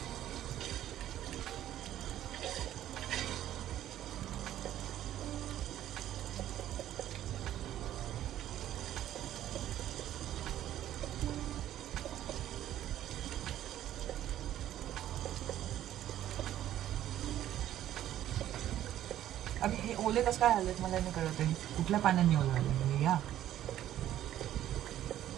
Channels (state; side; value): quieter; left; 12.3 dB